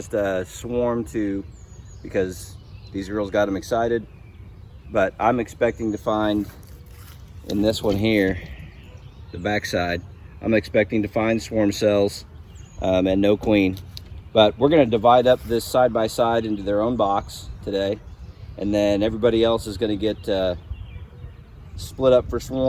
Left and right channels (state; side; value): identical; both; correlation 1.00